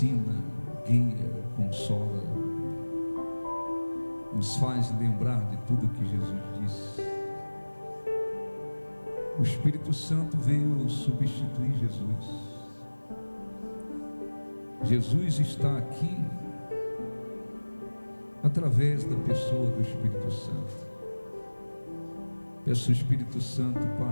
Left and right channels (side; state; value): both; inverted; correlation -1.00